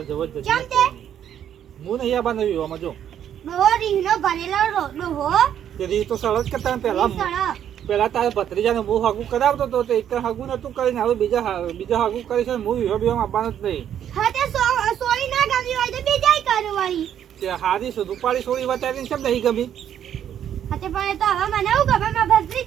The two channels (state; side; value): quieter; left; 9.8 dB